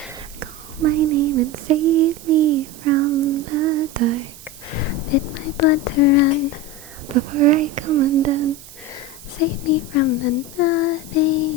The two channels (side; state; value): right; noise; hiss, 19 dB below the sound